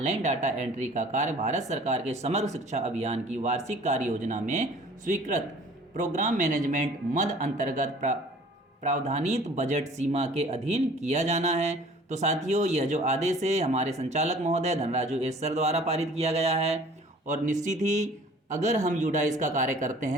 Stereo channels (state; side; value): normal; both; correlation 0.50